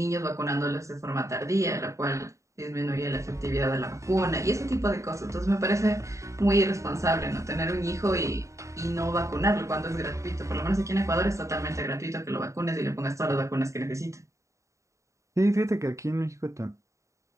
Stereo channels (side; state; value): left; late; 0.15 ms